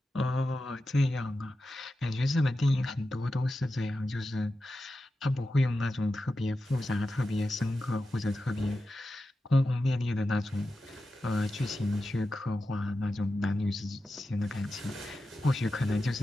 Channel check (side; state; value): both; normal; correlation 0.91